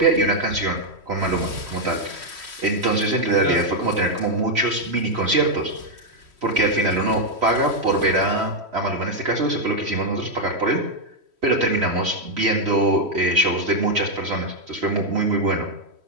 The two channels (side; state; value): left; late; 3.1 ms